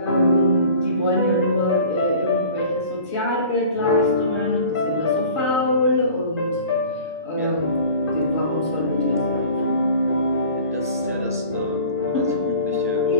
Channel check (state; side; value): inverted; both; correlation -0.44